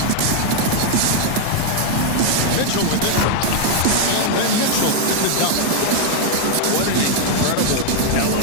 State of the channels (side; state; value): both; different; correlation 0.00